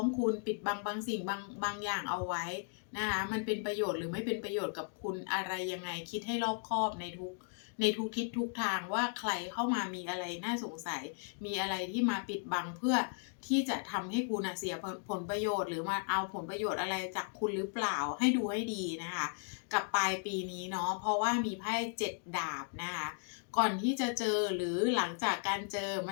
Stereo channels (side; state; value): right; silent; 54 dB below the other